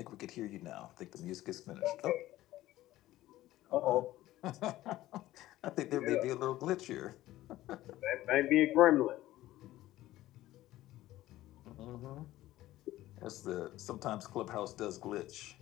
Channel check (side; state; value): right; quieter; 15.5 dB